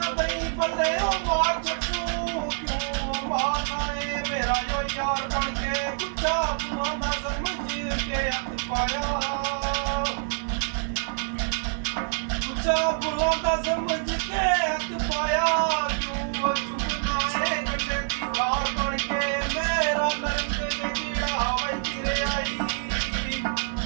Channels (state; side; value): silent; left; 61 dB below the other